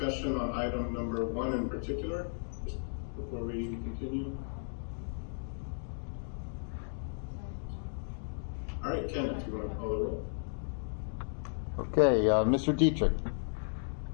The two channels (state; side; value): silent; right; digital silence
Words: on item number 1 in particular, just before we continue. All right, Ken, if you want to call the roll. Okay, Mr. Dietrich.